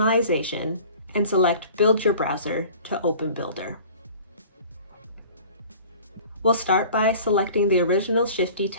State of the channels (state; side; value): inverted; both; correlation -0.45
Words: and select Build Your Browser to open Builder. We'll start by selecting the original Shifty